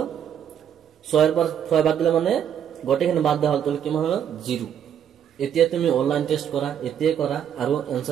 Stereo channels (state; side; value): quieter; left; 9.0 dB